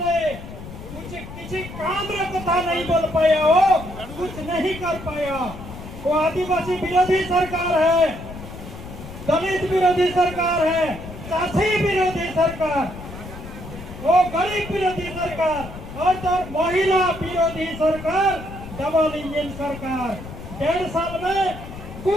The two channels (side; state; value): left; noise; rumble, 12 dB below the sound